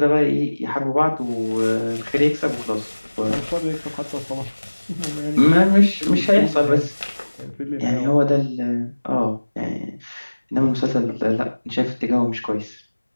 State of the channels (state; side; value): inverted; both; correlation -1.00